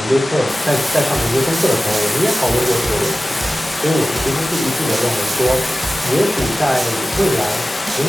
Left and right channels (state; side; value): normal; both; correlation 0.96